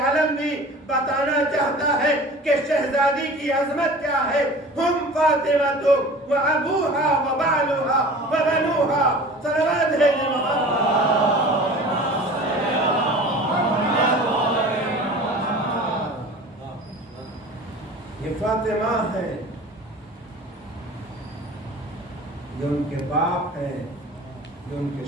بھی بتانا چاہتا ہے کہ شہزادی کی عظمت کیا ہے۔ ہم فاطمہ و ابوہا و بالوہا و بنوہا، صلوات ہے محمد۔ یہ فاطمہ ہے، یہ ان کے باپ ہیں، یہ ان کے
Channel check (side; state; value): both; normal; correlation 0.40